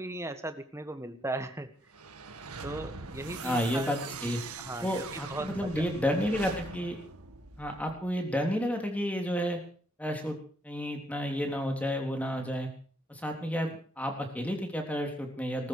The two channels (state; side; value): normal; both; correlation 0.74